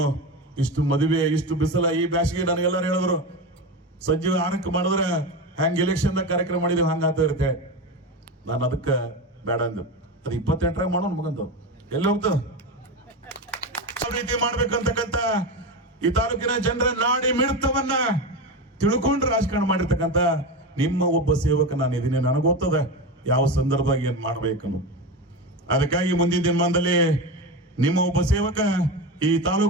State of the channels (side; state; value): both; normal; correlation 0.21